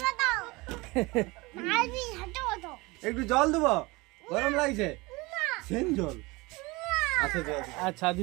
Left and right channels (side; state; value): left; quieter; 23.7 dB